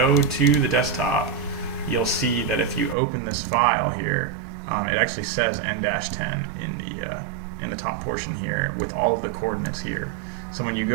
to the desktop, you'll see that if you open this file here, it actually says N-10 in the top portion here with all of the coordinates here. So when you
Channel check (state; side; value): drops out; left; at 3.0 s